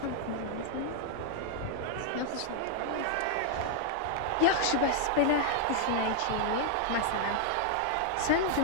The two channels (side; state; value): both; different; correlation -0.01